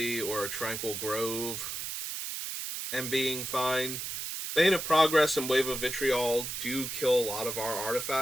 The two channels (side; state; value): right; noise; hiss, 5 dB below the sound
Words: or a Tranquil Grove and being fine. Bane of Progress and Wave of Vitriol do kill a lot of our